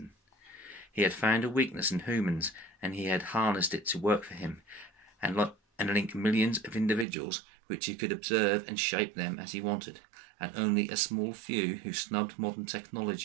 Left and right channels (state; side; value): drops out; left; at 7.1 s